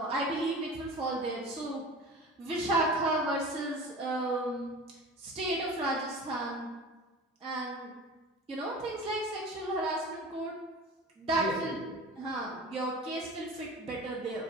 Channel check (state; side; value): normal; both; correlation 0.37